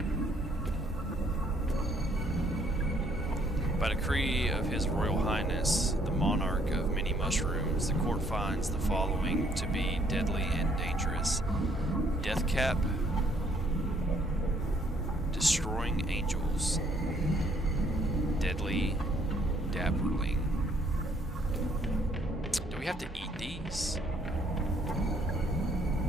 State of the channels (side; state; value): both; normal; correlation 0.65